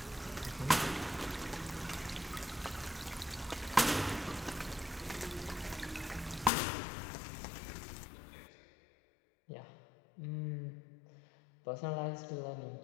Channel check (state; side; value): drops out; right; at 6.5 s